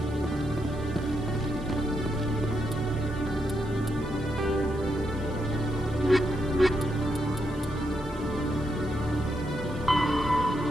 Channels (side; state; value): right; noise; hiss, 25 dB below the sound